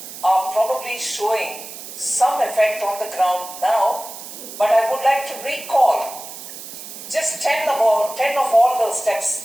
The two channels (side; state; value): right; noise; hiss, 12 dB below the sound